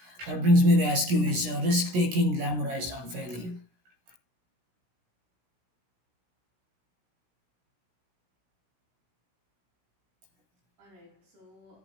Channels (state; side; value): late; left; 16 ms